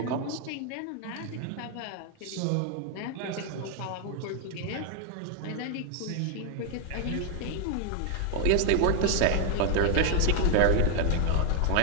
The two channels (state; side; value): different; both; correlation 0.00